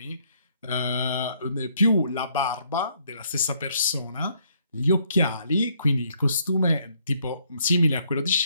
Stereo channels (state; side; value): inverted; both; correlation -0.69